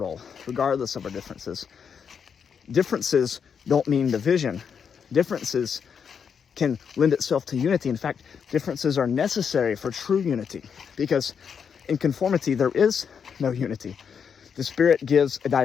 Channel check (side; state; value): right; quieter; 6.9 dB